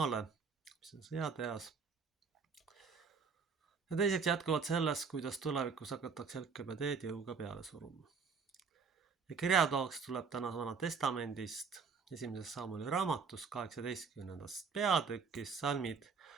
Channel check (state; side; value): quieter; left; 5.5 dB